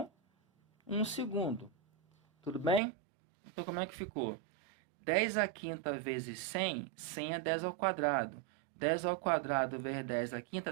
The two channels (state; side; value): drops out; left; at 2.8 s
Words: 1 segundo. Tudo bem? Então, como é que ficou? 10 a 5 vezes 100, 100 é 10 ao quadrado. 10 ao quadrado vezes 10 a